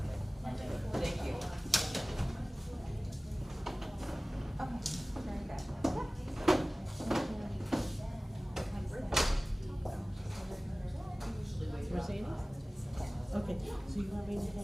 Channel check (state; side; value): normal; both; correlation 0.98